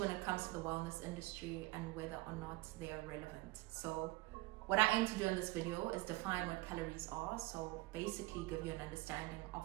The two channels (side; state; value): left; quieter; 21.1 dB